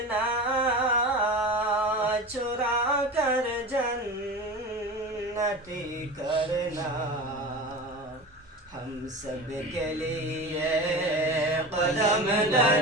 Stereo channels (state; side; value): normal; both; correlation 0.30